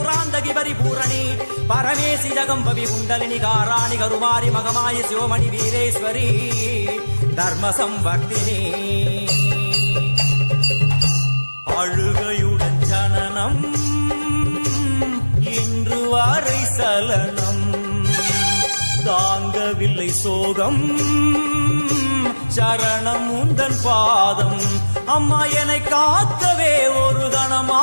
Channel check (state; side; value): inverted; both; correlation -1.00